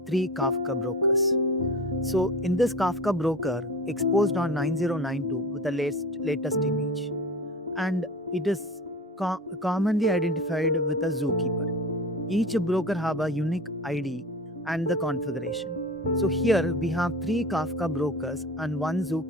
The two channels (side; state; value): both; normal; correlation 0.34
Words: 3 Kafka brokers. So in this Kafka broker, exposed on 9092 with the latest image, and it is commonly identified with a zookeeper. Each broker have a unique ID and the configuration. So here we have 3 Kafka brokers and 1